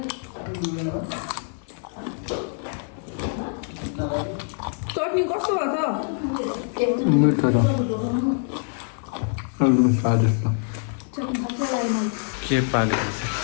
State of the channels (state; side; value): silent; right; 57 dB below the other